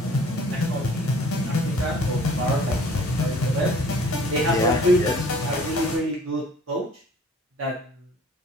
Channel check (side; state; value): both; normal; correlation 0.52